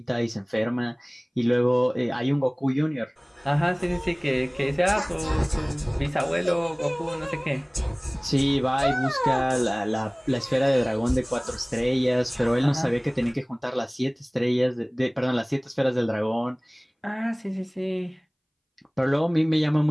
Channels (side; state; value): both; identical; correlation 1.00